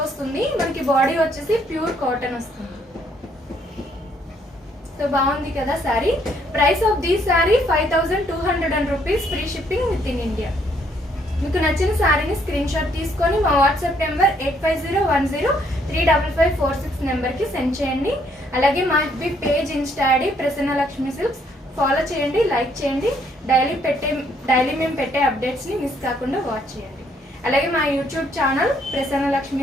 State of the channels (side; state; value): both; normal; correlation 0.69